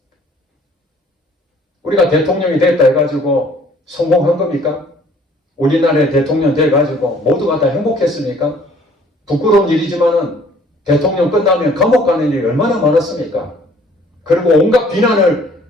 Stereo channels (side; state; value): both; normal; correlation 0.57